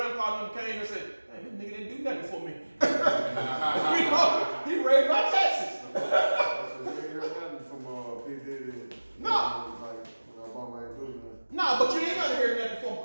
came and said, hey, this nigga didn't do nothing for me. You know, he raised my taxes. No, but you ain't gonna hear nothing from them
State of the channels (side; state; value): both; inverted; correlation -1.00